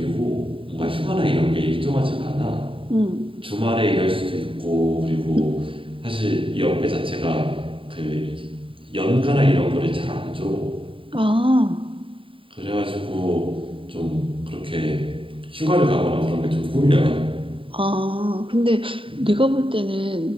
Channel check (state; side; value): late; left; 0.25 ms